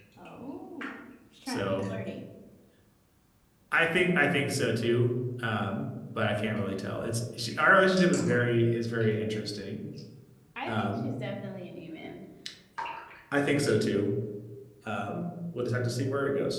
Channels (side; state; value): both; identical; correlation 1.00